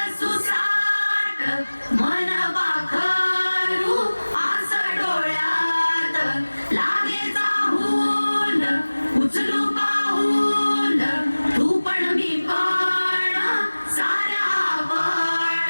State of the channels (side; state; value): both; inverted; correlation -1.00